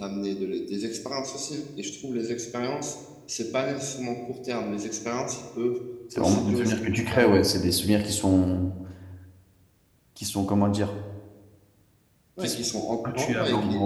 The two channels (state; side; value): identical; both; correlation 1.00